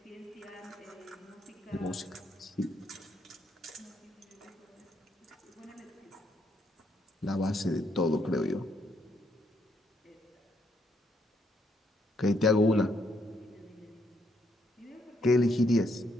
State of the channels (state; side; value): normal; both; correlation 0.74